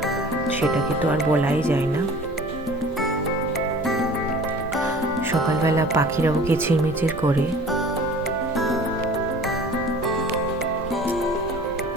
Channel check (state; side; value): normal; both; correlation 0.45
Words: সেটাকে তো আর বলাই যায় না। সকালবেলা পাখিরাও কিচিরমিচির করে।